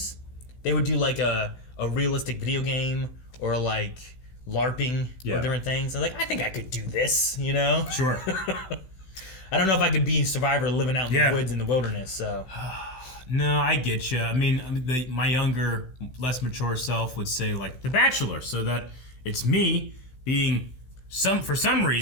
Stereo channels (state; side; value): late; right; 16 ms